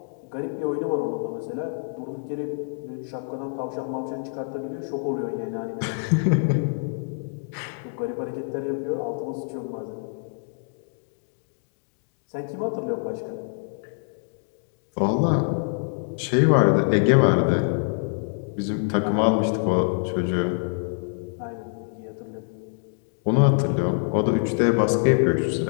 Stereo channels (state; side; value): silent; right; digital silence